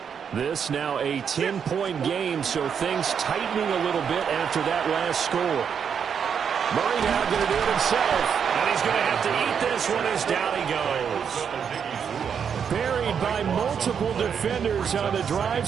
This now a 10-point game, so things tightening a little bit after that last score. Murray now going to do it himself, and he's going to have to eat this one as down he goes. Buried by multiple defenders on the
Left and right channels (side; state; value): left; quieter; 7.3 dB